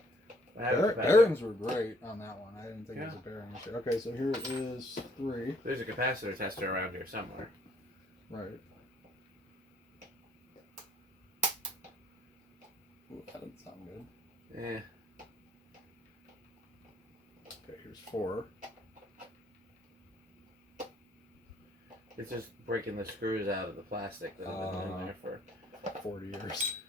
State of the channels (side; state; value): both; normal; correlation 0.64